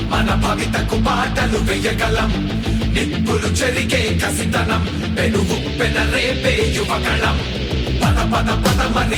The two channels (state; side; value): identical; both; correlation 1.00